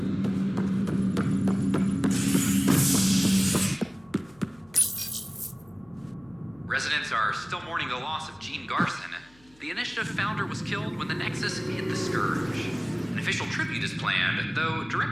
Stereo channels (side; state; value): left; noise; hum, 29 dB below the sound